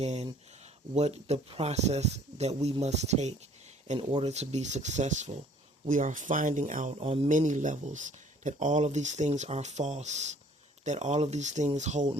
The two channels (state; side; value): normal; both; correlation 0.56